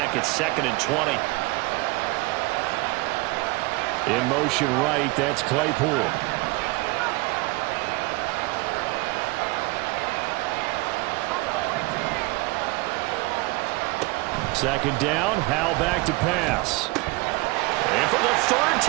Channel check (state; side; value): quieter; left; 23.5 dB